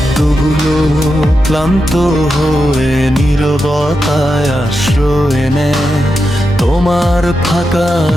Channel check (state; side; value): normal; both; correlation 0.88